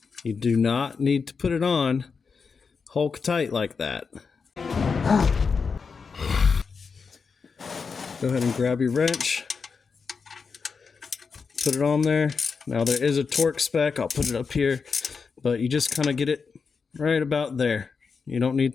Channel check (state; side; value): quieter; right; 5.3 dB